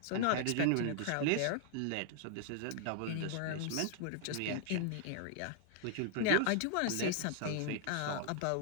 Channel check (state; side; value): different; both; correlation 0.00